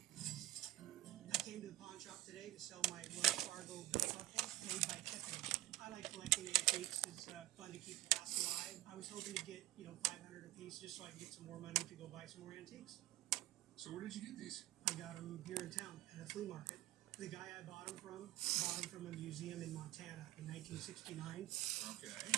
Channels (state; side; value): quieter; left; 15.7 dB